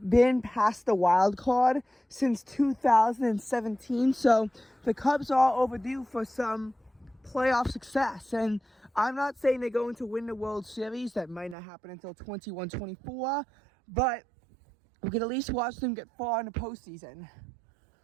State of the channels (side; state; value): left; drops out; at 11.6 s